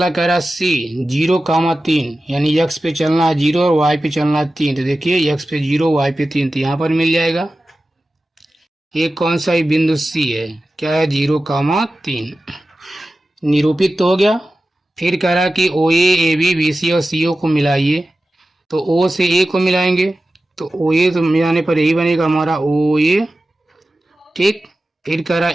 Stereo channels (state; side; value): normal; both; correlation 0.94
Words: कह रहा है सी 0,3, यानी एक्स पे चलना है 0 और वाई पे चलना है 3। तो देखिए एक्स पे 0 वाई पे 3, तो यहाँ पर मिल जाएगा। ये कौन सा ही बिंदु सी है, क्या है 0,3, निरूपित तो हो गया। फिर कह रहा है कि ओ ए बी बी सी और सी ओ को मिलाइए। तो ओ से ए को मिलाएंगे, तो ओ ए तो मिलाने पर यही बनेगा हमारा ओ ए। ठीक। फिर कह रहा